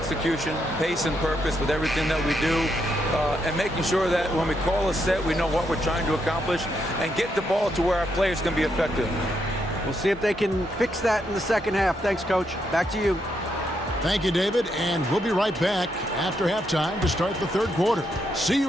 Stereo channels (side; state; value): both; normal; correlation 0.78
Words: pace and purpose with everything that we do, and making sure that when we call a set, we know what we're trying to accomplish and get the ball to where our players can be effective. We'll see if they can fix that in the second half. Thanks, Coach. Back to you. Thank you, David, and we'll be right back after halftime to start the third quarter. See